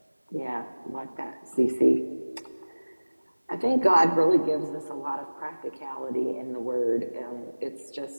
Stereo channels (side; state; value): both; inverted; correlation -1.00